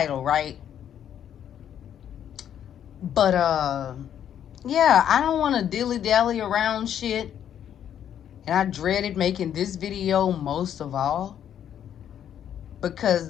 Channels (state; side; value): quieter; right; 9.7 dB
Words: right? But yeah, I don't want to dilly-dally around shit. And I dreaded making this video most of all,